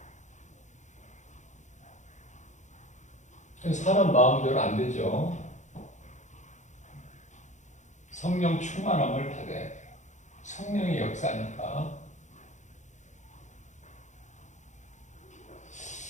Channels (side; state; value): right; late; 0.35 ms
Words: 사람 마음대로 안 되죠. 성령 충만함을 받아야 돼요. 성령의 역사니까.